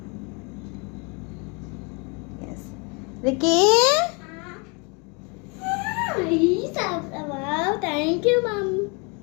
Yes Ricky, thank you mum.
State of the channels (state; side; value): quieter; right; 32.0 dB